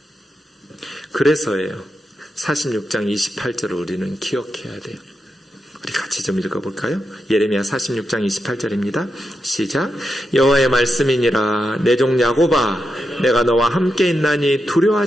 그래서예요. 46장 28절을 우리는 기억해야 돼요. 우리 같이 좀 읽어볼까요? 예레미야 46장 28절입니다. 시작. 여호와의 말씀이니라. 내 종 야곱아, 내가 너와 함께 있나니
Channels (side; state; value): both; normal; correlation 0.87